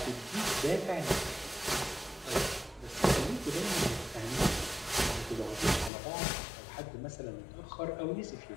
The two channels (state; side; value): drops out; right; at 5.9 s